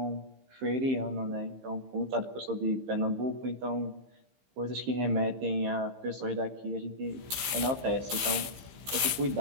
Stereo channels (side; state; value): left; late; 15 ms